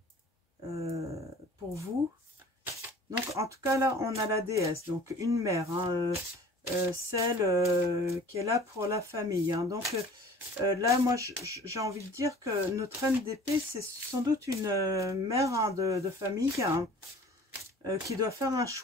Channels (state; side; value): normal; both; correlation 0.47